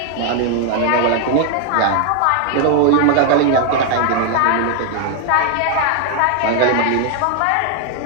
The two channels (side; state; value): both; different; correlation 0.00